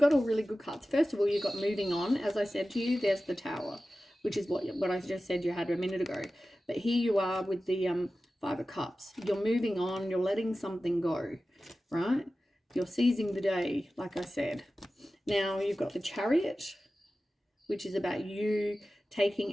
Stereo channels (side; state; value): both; normal; correlation 0.95